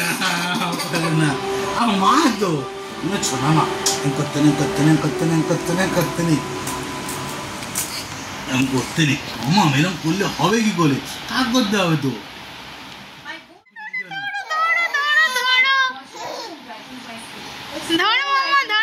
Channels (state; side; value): identical; both; correlation 1.00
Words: করে না আমার মা তো ছোনা মা করতে নেই এরকম করতে নেই মামা এরকম করলে হবে কি করে কাজ করতে হবে তো